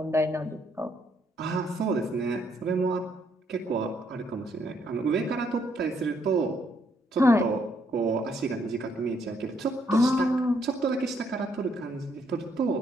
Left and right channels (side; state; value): both; normal; correlation 0.72